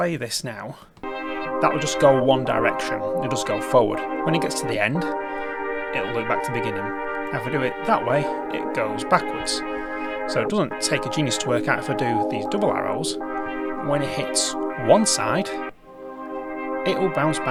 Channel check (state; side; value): identical; both; correlation 1.00